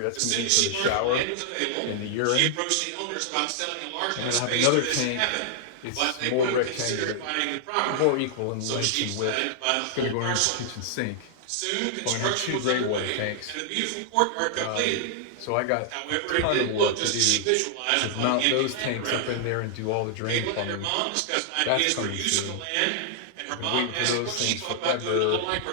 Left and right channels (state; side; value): different; both; correlation -0.01